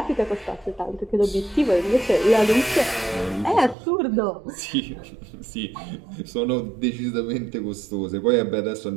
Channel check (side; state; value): left; drops out; at 3.8 s